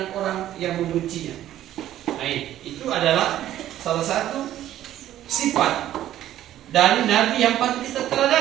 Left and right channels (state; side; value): quieter; left; 12.6 dB